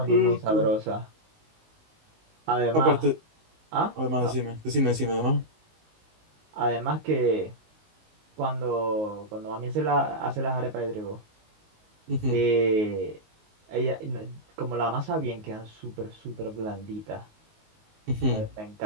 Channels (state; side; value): late; left; 19 ms